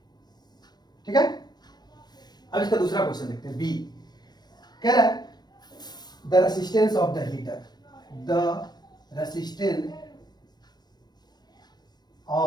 ठीक है। अब इसका दूसरा क्वेश्चन देखते हैं, बी कह रहा है the resistance of the heater, the resistance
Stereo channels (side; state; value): right; late; 0.20 ms